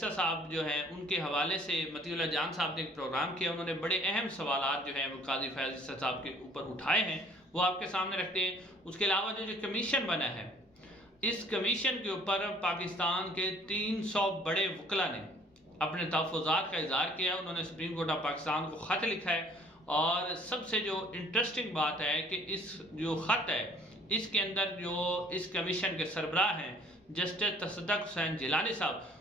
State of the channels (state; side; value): normal; both; correlation 0.56